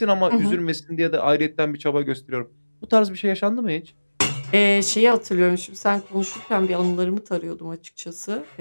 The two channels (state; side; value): inverted; both; correlation -1.00